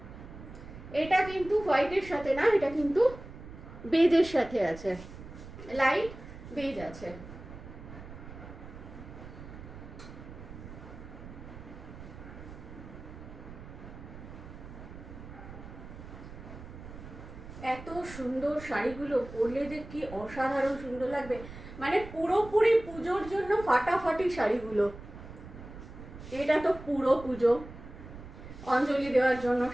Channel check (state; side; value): noise; right; rumble, 14 dB below the sound